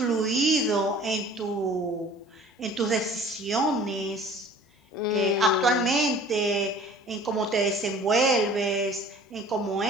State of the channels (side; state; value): both; normal; correlation 0.48